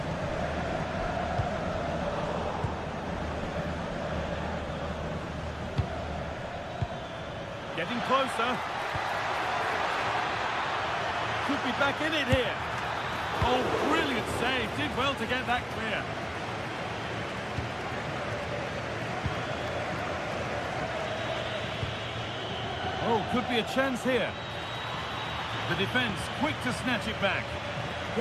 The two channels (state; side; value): identical; both; correlation 1.00